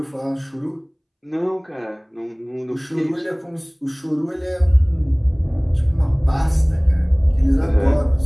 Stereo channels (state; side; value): identical; both; correlation 1.00